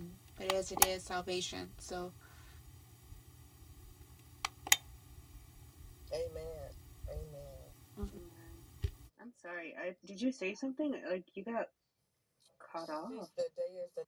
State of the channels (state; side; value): identical; both; correlation 1.00